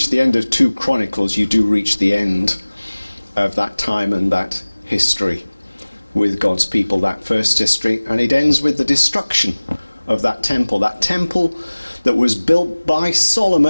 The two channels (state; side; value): inverted; both; correlation -1.00